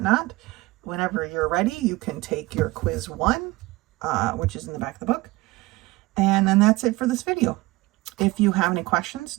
whenever you're ready, you can take your quiz 1, which is in the back of the book. And then that's it for this video. If you have any questions,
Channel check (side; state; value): left; quieter; 20.4 dB